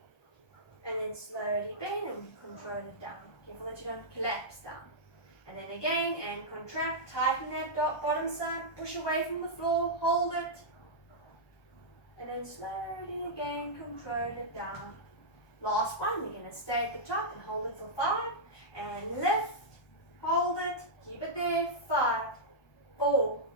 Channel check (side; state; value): right; late; 1.2 ms